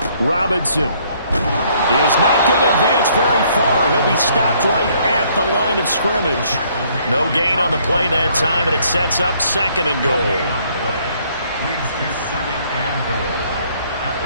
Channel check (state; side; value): inverted; both; correlation -0.65